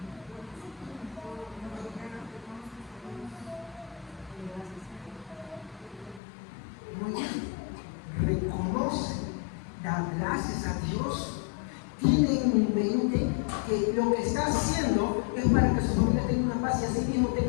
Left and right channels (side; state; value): right; drops out; at 6.2 s